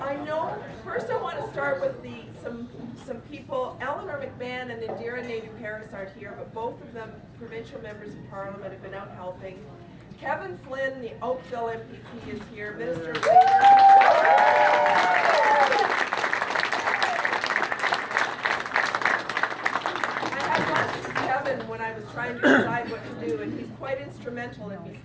I know, first I want to start with some people. Eleanor McMahon and Indira Naidoo-Paris aren't here, but both of them, provincial members of Parliament, have been out helping. Kevin Flynn, the Oakville MPP, is here. Minister of Labour. I had lunch with Kevin when I was trying to decide what to do, and he's quite instrumental in me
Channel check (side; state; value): both; identical; correlation 1.00